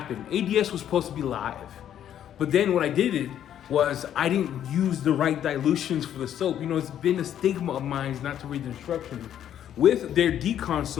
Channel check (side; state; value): right; quieter; 10.3 dB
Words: ADS was supposed to be live. But then what I did was I didn't use the right dilutions for the soap. You know, it's been a stigma of mine not to read the instructions. With their decon